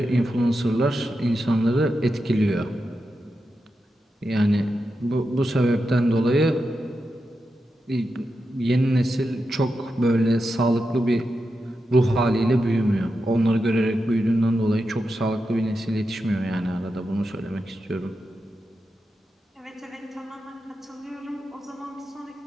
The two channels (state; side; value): normal; both; correlation 0.88